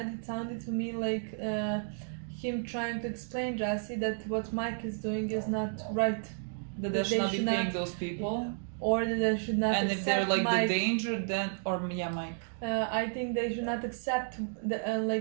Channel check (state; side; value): silent; left; digital silence